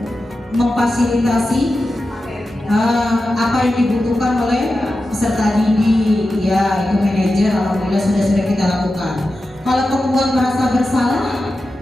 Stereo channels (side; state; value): both; normal; correlation 0.92